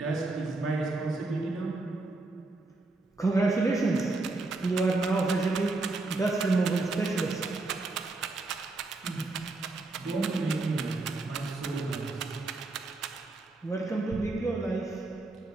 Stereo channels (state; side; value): quieter; left; 3.2 dB